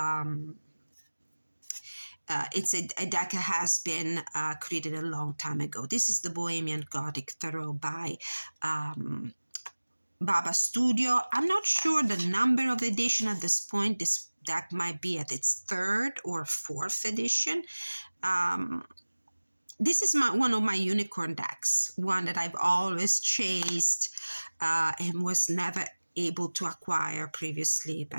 deck that has been created a long time ago. This is the Bohemian Gothic Tarot by Baba Studio. I'm not sure the number of edition at this point. This deck might be at its 3rd or 4th edition. This is one of my unicorn decks, one that I've always chased and was never able to acquire previously,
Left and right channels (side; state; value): both; inverted; correlation -1.00